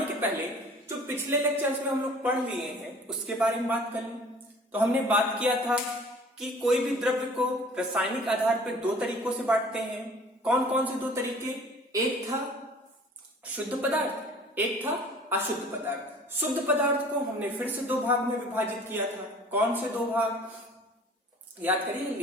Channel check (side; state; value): both; normal; correlation 0.48